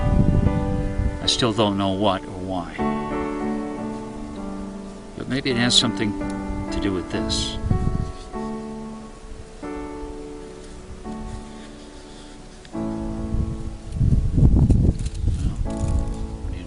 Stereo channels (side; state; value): both; identical; correlation 1.00